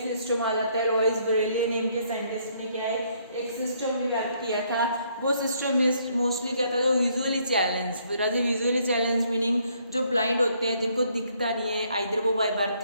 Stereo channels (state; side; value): inverted; both; correlation -0.69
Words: आ जाता है। लॉइस ब्रेली नेम के साइंटिस्ट ने क्या है एक सिस्टम डेवलप किया था। वो सिस्टम में मोस्टली क्या था जो visually challenge, visually challenge meaning जो ब्लाइंड होते हैं जिनको दिखता नहीं है, आइदर वो बाय बर्थ